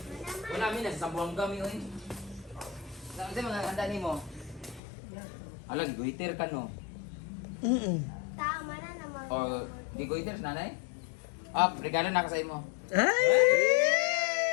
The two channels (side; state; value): right; drops out; at 4.8 s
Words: Wala mi nasa Sambuanga mi oy. Sa mga handa nimo. Alag guiter ka no. Tama na naman. O di guiter sa nanay? Ah, regalo na ka sa imo. Ay!